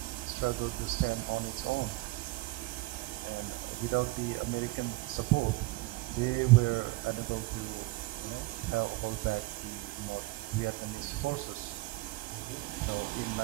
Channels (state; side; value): quieter; left; 20.9 dB